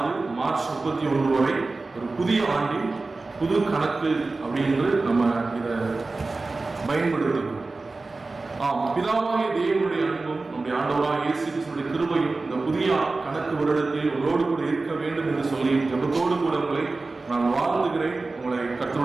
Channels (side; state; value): left; quieter; 3.5 dB